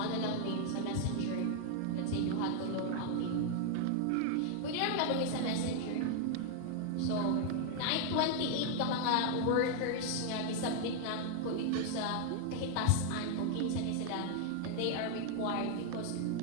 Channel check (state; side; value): different; both; correlation 0.00